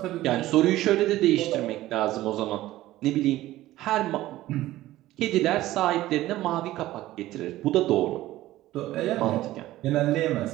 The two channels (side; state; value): left; quieter; 15.7 dB